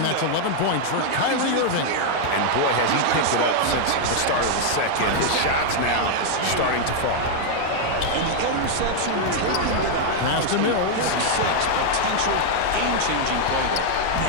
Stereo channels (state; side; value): different; both; correlation 0.00